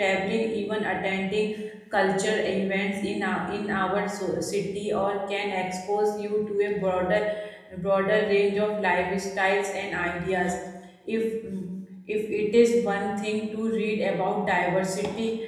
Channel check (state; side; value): identical; both; correlation 1.00